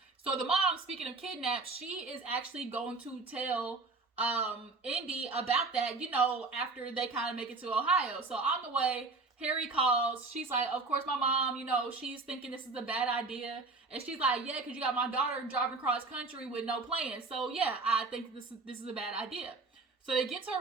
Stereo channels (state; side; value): quieter; left; 3.7 dB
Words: So the mom, speaking of kidnap, she is actually going to tell Indy about that, after they kind of make it to Ohio. So on the way, Harry calls. She's like, of course, my mom, she's thinking this is a bad idea. And she's like, yeah, because you got my daughter driving across country with no plan. So yeah, I think this is a bad idea. So they get to